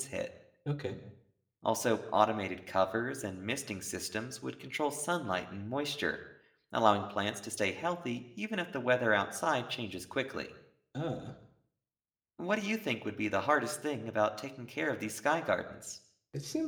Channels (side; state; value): both; identical; correlation 1.00